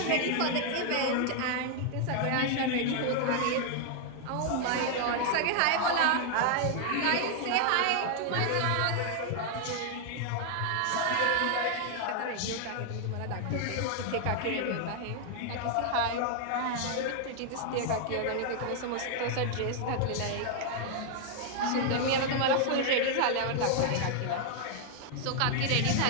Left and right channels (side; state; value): both; different; correlation 0.00